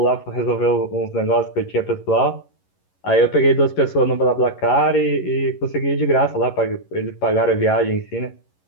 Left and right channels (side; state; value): right; late; 11 ms